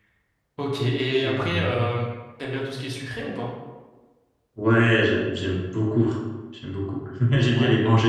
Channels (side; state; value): both; identical; correlation 1.00